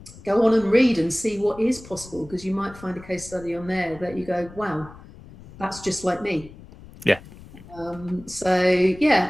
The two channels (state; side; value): noise; left; rumble, 19 dB below the sound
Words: Go on and read and see what is possible, because you might find a case study on there that you go, wow, that's just like me. Yeah. So yeah,